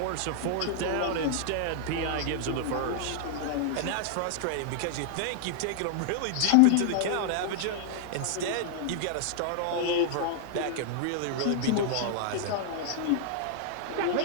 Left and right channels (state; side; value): different; both; correlation -0.01